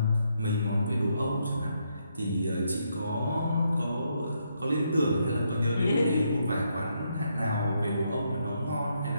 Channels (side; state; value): both; inverted; correlation -0.77